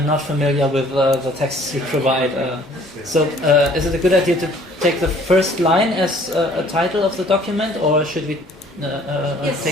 not familiar with the texts you provide. Is it a good idea to take the first line as a title of the document, or should we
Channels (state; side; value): normal; both; correlation 0.56